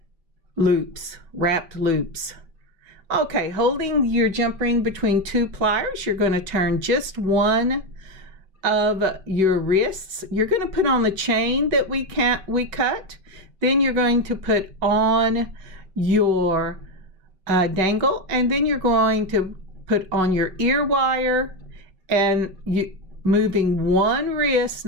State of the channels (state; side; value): late; left; 5.2 ms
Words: loops, wrapped loops. Okay, holding your jump ring between two pliers, you're going to turn just one of your wrists. You're going to put on the chain that we cut. Then you're going to put on your dangle, and then you're going to put on your ear wire, and moving one wrist,